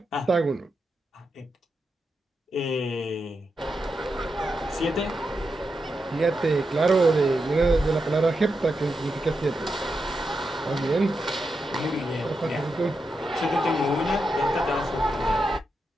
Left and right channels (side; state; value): both; normal; correlation 0.86